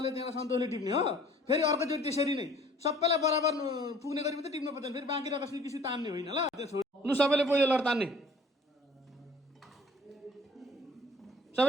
त्यहाँबाट सन्तोषले टिप्ने हो फेरि अर्कोचोटि त्यसरी नै सबैलाई बराबर पुग्ने गरी मात्रै टिप्नु पर्दैन फेरि बाँकी रहेको किसी तान्ने होइन ल त्यो छोड लु सबैले पहिलो लड तान्ने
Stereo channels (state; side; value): normal; both; correlation 0.52